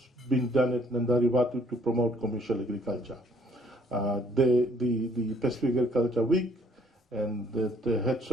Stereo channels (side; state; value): both; normal; correlation 0.63